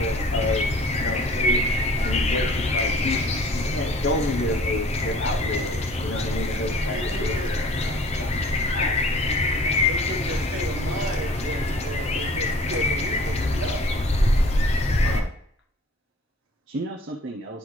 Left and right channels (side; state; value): both; normal; correlation 0.49